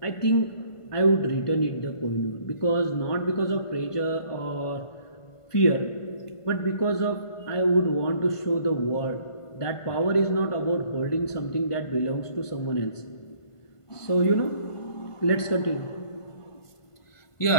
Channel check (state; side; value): late; right; 1.5 ms